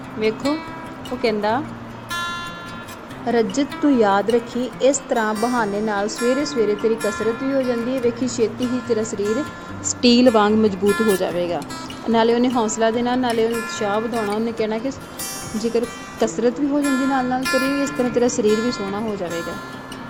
ਵੇਖੋ ਉਹ ਕਹਿੰਦਾ ਰਜਤ ਤੂੰ ਯਾਦ ਰੱਖੀ, ਇਸ ਤਰ੍ਹਾਂ ਬਹਾਨੇ ਨਾਲ ਸਵੇਰੇ ਸਵੇਰੇ ਤੇਰੀ ਕਸਰਤ ਵੀ ਹੋ ਜਾਂਦੀ ਹੈ, ਵੇਖੀ ਛੇਤੀ ਹੀ ਤੇਰਾ ਸਰੀਰ ਸਟੀਲ ਵਾਂਗ ਮਜ਼ਬੂਤ ਹੋ ਜਾਵੇਗਾ। ਨਾਲੇ ਉਹਨੇ ਹੌਸਲਾ ਦੇਣਾ, ਨਾਲੇ ਉਹਨੇ ਉਤਸ਼ਾਹ ਵਧਾਉਣਾ। ਉਹਨੇ ਕਹਿਣਾ ਕਿ ਜੇਕਰ ਕਸਰਤ ਵੀ ਹੋ ਜਾਂਦੀ ਨਾਲ ਨਾਲ ਤੇਰੀ, ਇਸ ਤਰ੍ਹਾਂ ਤੇਰਾ ਸਰੀਰ ਵੀ ਸੋਹਣਾ ਹੋ ਜਾਵੇਗਾ।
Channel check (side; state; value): both; identical; correlation 1.00